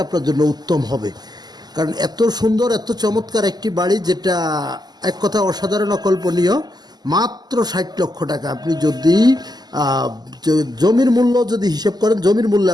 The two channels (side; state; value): left; late; 0.20 ms